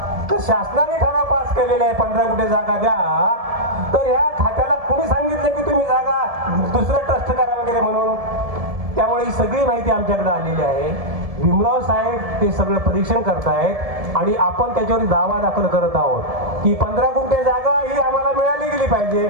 तर शासनाने ठराव पास केलेला आहे 15 गुंठे जागा द्या, तर ह्या खात्याला कोणी सांगितलं की तुम्ही जागा दुसरं ट्रस्ट करा वगैरे म्हणून? त्यामुळे ही सगळी माहिती आमच्याकडे आलेली आहे. भीमराव साहेब ते सगळं परीक्षण करतायत आणि आपण त्याच्यावर दावा दाखल करत आहोत की 15 गुंठे जागा ही आम्हाला मिळाली गेली पाहिजे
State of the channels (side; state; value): left; late; 1.7 ms